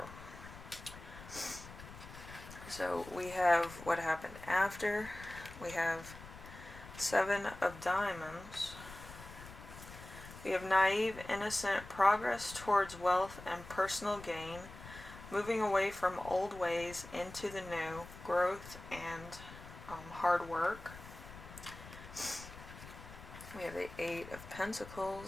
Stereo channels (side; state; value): left; noise; rumble, 15 dB below the sound